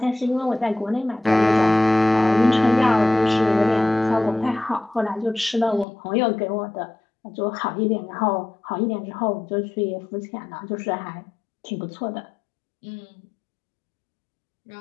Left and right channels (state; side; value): drops out; right; at 5.9 s